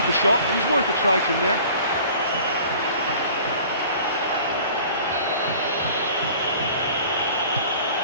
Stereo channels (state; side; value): inverted; both; correlation -0.47